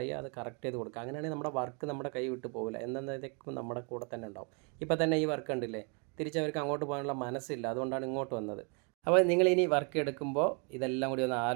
അത് കറക്റ്റ് ചെയ്ത് കൊടുക്കുക. അങ്ങനെയാണെങ്കിൽ നമ്മുടെ വർക്ക് നമ്മുടെ കൈ വിട്ട് പോകില്ല, എന്നതൊക്കെ നമ്മുടെ കൂടെ തന്നെ ഉണ്ടാവും. ഇപ്പോൾ തന്നെ ഈ വർക്ക് ഉണ്ടില്ലേ, തിരിച്ചവർക്ക് അങ്ങോട്ട് പോകാനുള്ള മനസ്സില്ല, അതുകൊണ്ടാണ് ഇങ്ങോട്ട് വന്നത്. അപ്പോൾ നിങ്ങൾ ഇനി വർക്ക് എടുക്കുമ്പോൾ ഇതെല്ലാം കൂടി ഒന്ന്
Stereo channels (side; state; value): left; quieter; 35.8 dB